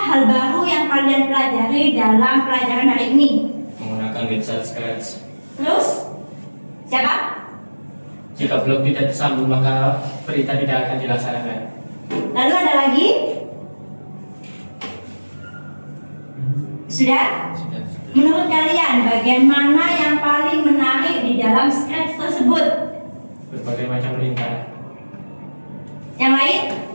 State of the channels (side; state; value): both; inverted; correlation -1.00